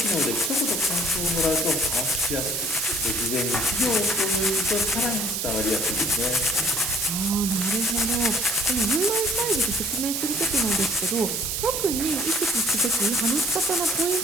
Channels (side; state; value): right; noise; hiss, 1 dB below the sound